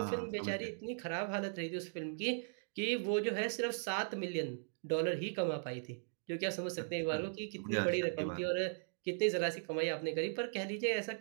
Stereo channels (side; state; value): left; silent; digital silence